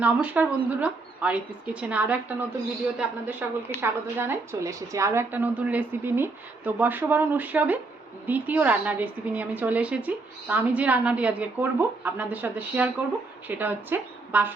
বন্ধুরা, আরিত্রিস কিচেনে আরও একটা নতুন ভিডিওতে আপনাদের সকলকে স্বাগত জানাই। চলে এসেছি আরও একটা নতুন রেসিপি নিয়ে। তো বর্ষবরণ উৎসবে দ্বিতীয় রান্নার রেসিপি নিয়ে আমি চলে এসেছি। তো আমি যে রান্নাটি আজকে করব, আপনাদের সাথে শেয়ার করব, সেটা হচ্ছে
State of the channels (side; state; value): left; quieter; 3.6 dB